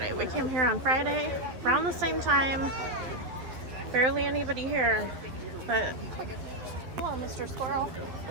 We came here on Friday around the same time. Barely anybody here, but hello, Mr. Squirrel.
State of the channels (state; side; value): late; left; 12 ms